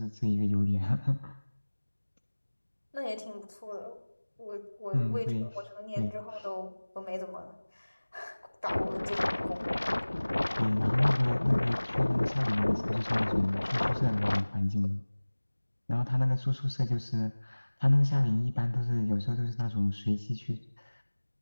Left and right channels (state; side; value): inverted; both; correlation -1.00